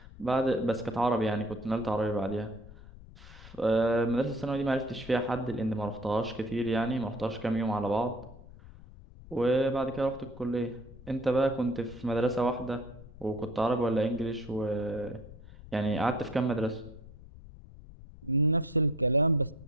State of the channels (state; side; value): noise; left; rumble, 18 dB below the sound